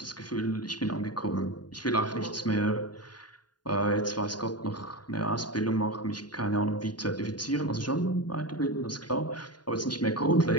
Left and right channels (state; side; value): late; right; 0.70 ms